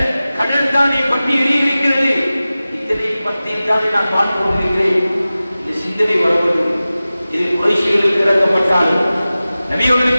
கடல் தானே பற்றி எரியிருக்கிறது, இதனை பற்றி தானே நான் பார்த்து கொண்டிருக்கிறேன். இந்த சிந்தனை வருவது இது குறைஷிகளுக்கு இறக்கப்பட்டாலும்,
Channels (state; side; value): inverted; both; correlation -0.96